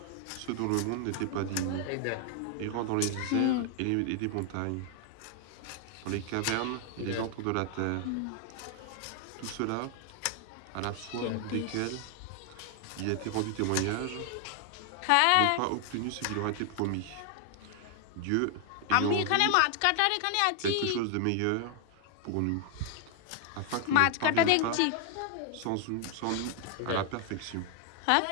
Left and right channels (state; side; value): different; both; correlation 0.00